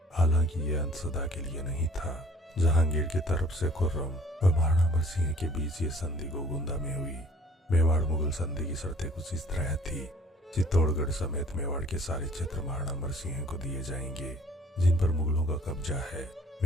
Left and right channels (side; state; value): both; normal; correlation 0.55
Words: हालांकि यह अंत सदा के लिए नहीं था। जहांगीर की तरफ से खुर्रम और महाराणा अमर सिंह के बीच ये संधि गोगुंदा में हुई। मेवाड़ मुगल संधि की शर्तें कुछ इस तरह थी। चित्तौड़गढ़ समेत मेवाड़ के सारे क्षेत्र महाराणा अमर सिंह को दिए जाएंगे, जिन पर मुगलों का कब्जा है।